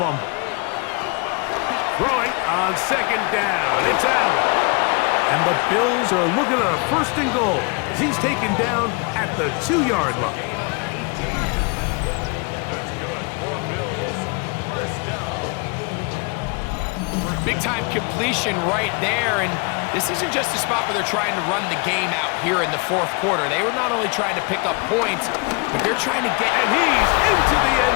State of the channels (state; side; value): quieter; right; 31.3 dB